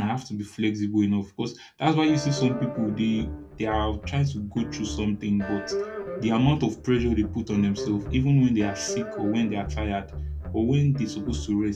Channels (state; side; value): identical; both; correlation 1.00